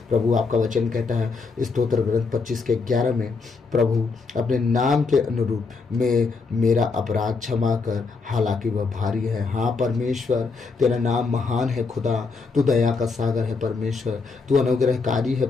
प्रभु। आपका वचन कहता है स्तोत्र ग्रंथ 25 के 11 में, प्रभु अपने नाम के अनुरूप में मेरा अपराध क्षमा कर, हालांकि वह भारी है। हाँ परमेश्वर, तेरा नाम महान है खुदा। तू दया का सागर है परमेश्वर, तू अनुग्रहकारी है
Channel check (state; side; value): quieter; right; 4.5 dB